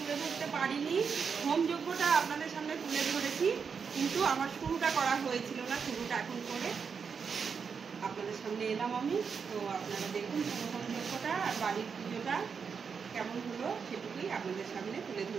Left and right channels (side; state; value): left; quieter; 6.1 dB